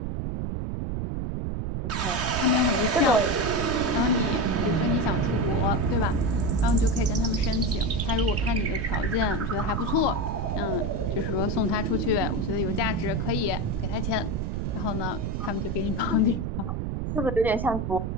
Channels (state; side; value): noise; right; rumble, 2 dB below the sound